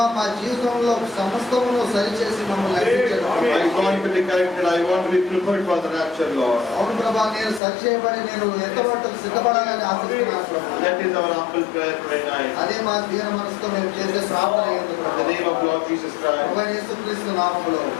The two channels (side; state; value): right; drops out; at 7.6 s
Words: మా జీవితంలో సమస్తమును సరిచేసి మమ్మల్ని నడిపించండి ప్రభా. I want to be corrected. I want to be prepared for the rapture, Lord. అవును ప్రభా, నేను సరిచేయబడి నేను ఎంతవరకు సిద్ధపడాలని ఆశిస్తున్నాను ప్రభా. That is our humble prayer today night. అదే మా దీన మనసుతో మేము చేసే ప్రార్థన అయ్యింది In the ప్రభా. name of Lord Jesus Christ. ప్రభా యేసుక్రీస్తు నామములో